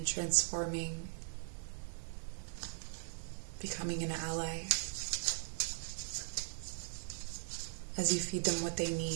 transforming, becoming an ally as you feed them what they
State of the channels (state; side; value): silent; left; 51 dB below the other